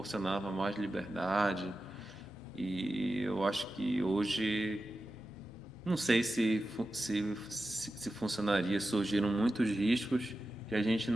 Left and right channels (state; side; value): normal; both; correlation 0.92